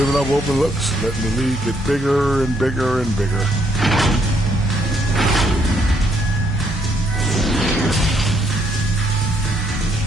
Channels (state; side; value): normal; both; correlation 0.71